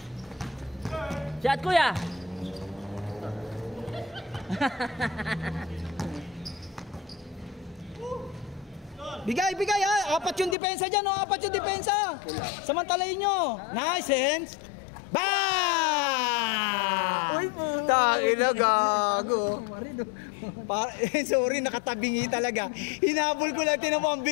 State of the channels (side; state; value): right; drops out; at 10.6 s